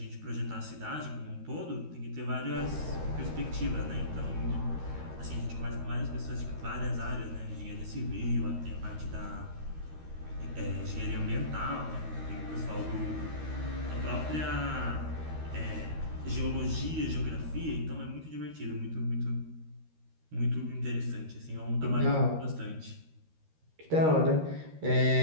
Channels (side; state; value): left; late; 13 ms